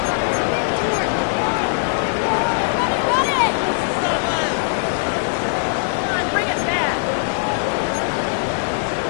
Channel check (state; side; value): silent; right; 63 dB below the other